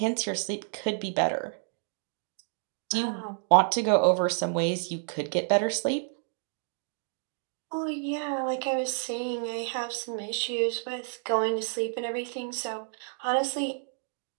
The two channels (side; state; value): left; silent; 58 dB below the other